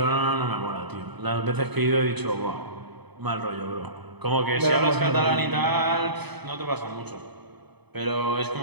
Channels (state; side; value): late; left; 0.99 ms